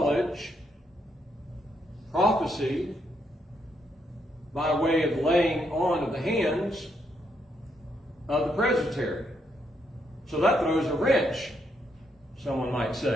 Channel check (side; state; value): both; normal; correlation 0.76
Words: prophecy, by way of laying on of the hands of the presbytery. So that throws a wrench, someone might